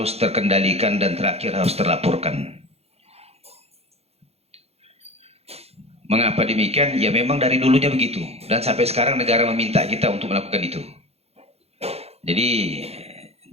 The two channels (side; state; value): left; late; 0.30 ms